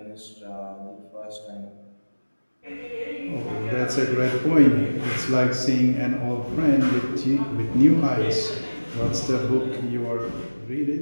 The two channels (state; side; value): inverted; both; correlation -1.00